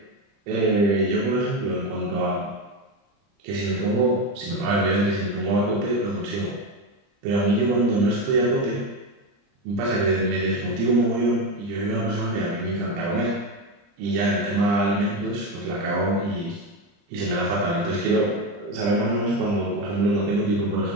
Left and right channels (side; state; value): left; late; 30 ms